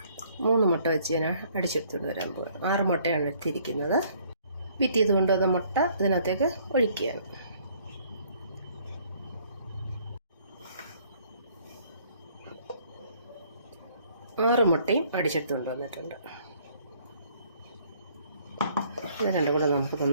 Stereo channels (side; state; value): both; inverted; correlation -0.62